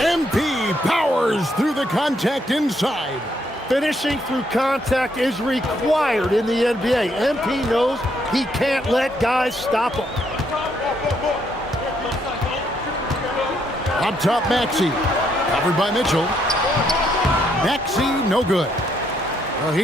powers through the contact inside. Finishing through contact is required in the NBA. MP knows he can't let guys stop him. Up top, Maxey. Covered by Mitchell. Maxey, no good. The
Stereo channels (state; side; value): normal; both; correlation 0.73